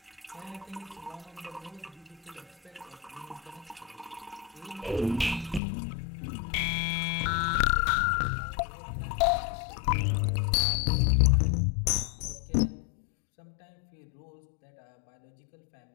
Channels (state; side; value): drops out; right; at 5.6 s